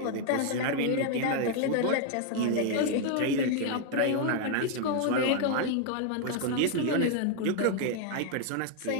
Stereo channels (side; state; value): both; different; correlation 0.00